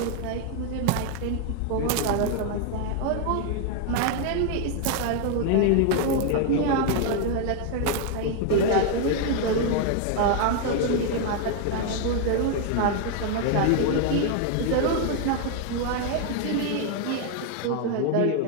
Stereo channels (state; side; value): different; both; correlation 0.00